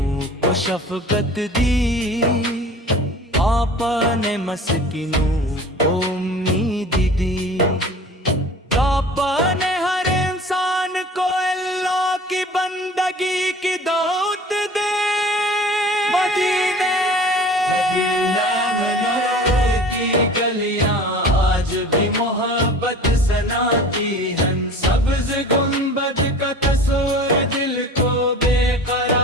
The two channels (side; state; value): both; normal; correlation 0.42